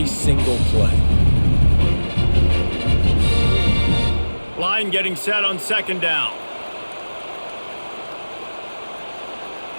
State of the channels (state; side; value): inverted; both; correlation -1.00